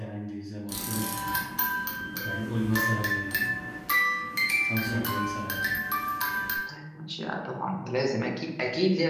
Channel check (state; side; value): identical; both; correlation 1.00